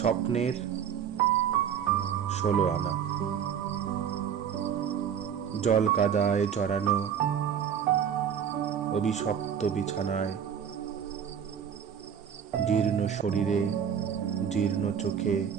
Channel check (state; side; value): quieter; left; 8.2 dB